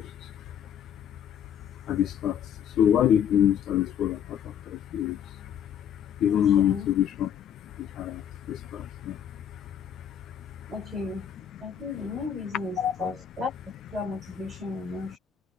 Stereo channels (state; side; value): quieter; right; 9.0 dB